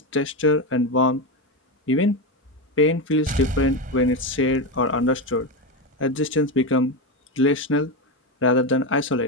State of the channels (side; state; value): both; normal; correlation 0.13